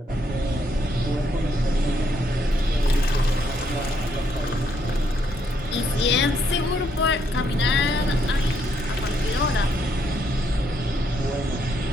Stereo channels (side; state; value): both; normal; correlation 0.74